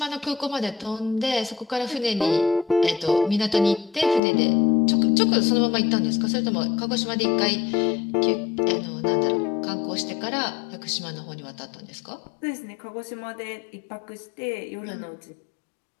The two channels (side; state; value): right; drops out; at 4.2 s